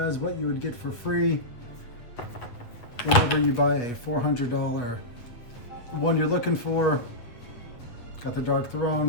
what you would get for free whenever you buy a $400 one you're looking for. Got the Dark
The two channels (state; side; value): late; right; 8.2 ms